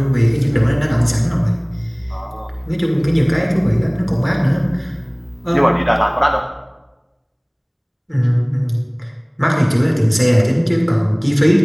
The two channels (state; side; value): identical; both; correlation 1.00